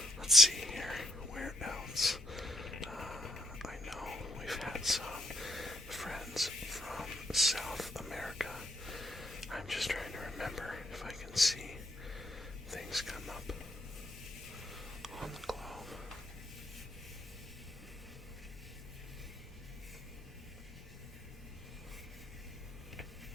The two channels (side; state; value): both; normal; correlation 0.76